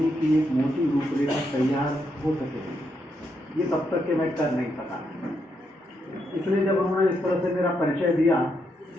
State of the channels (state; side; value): normal; both; correlation 0.80